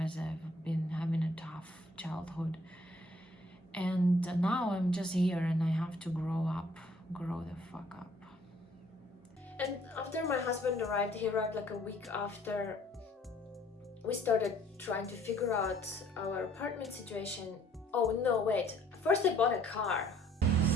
as I've been having a tough childhood. And now I'm just here and I have to grow the fuck up. And after my husband arrived, he arrived like a week after. We started trying to figure out our apartment situation. Oh no, wait. First I bought a car.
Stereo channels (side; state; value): both; normal; correlation 0.60